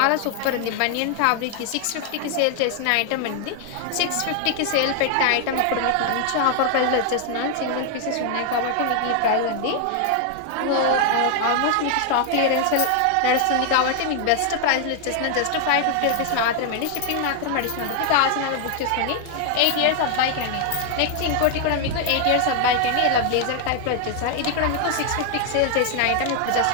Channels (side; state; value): both; different; correlation 0.00